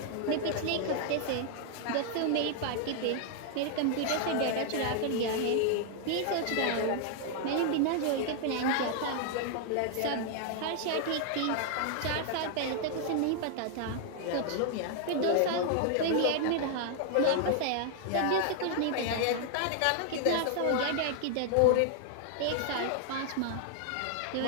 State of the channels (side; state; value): both; different; correlation 0.00